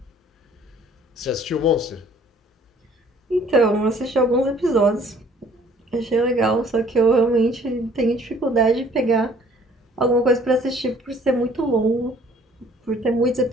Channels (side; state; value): both; normal; correlation 0.57